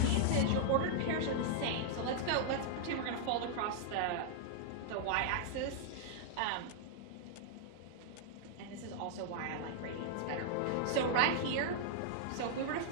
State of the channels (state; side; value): different; both; correlation -0.01